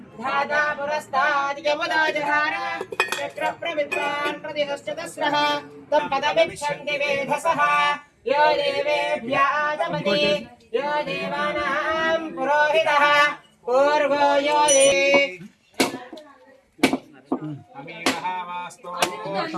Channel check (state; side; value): identical; both; correlation 1.00